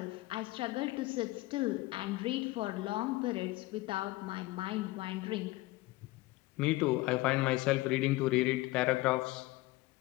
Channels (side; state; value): right; quieter; 19.9 dB